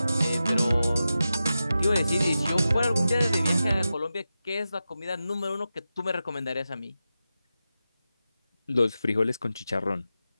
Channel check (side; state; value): both; inverted; correlation -0.92